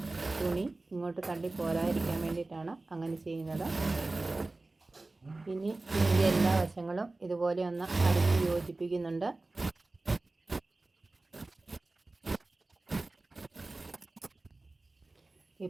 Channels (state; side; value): quieter; left; 3.1 dB